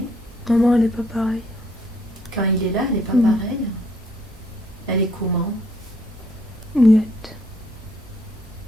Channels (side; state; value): both; normal; correlation 0.68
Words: Maman, elle est pas pareille. Quand il est là, elle n'est pas Mm. pareille. Elle est comment? Muette.